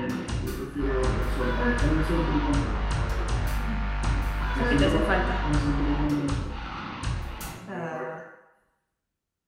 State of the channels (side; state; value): both; identical; correlation 1.00